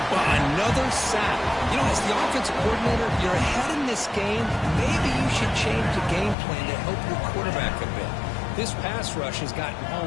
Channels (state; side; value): drops out; right; at 6.4 s